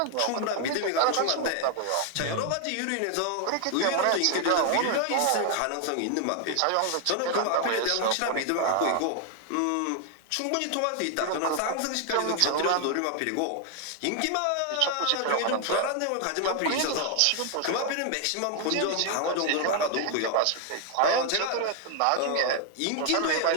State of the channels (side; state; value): both; different; correlation 0.00